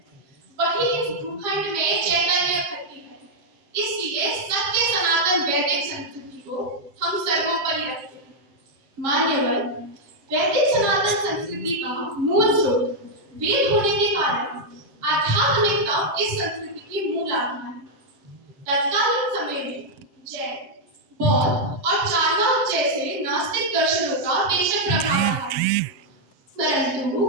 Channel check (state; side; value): late; left; 7.8 ms